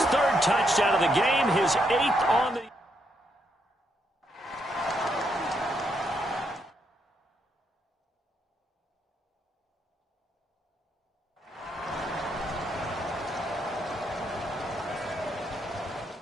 3rd touchdown of the game, his 8th on the...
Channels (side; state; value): both; normal; correlation 0.77